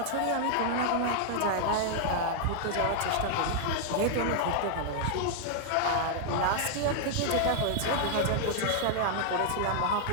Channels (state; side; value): different; both; correlation -0.01